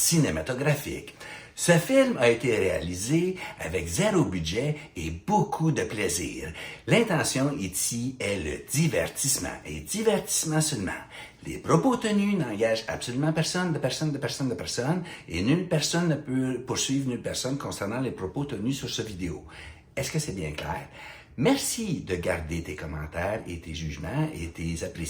Ce film a été réalisé avec zéro budget et beaucoup de plaisir. L'intention ici est le divertissement, et divertissement seulement. Les propos tenus n'engagent absolument personne, et nulle personne ne peut poursuivre nulle personne concernant les propos tenus sur cette vidéo. Est-ce que c'est bien clair? Merci de garder tes commentaires et tes jugements et tes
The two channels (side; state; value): both; identical; correlation 1.00